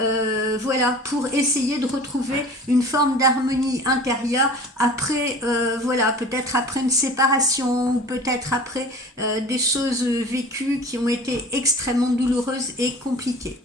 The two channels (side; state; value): both; normal; correlation 0.41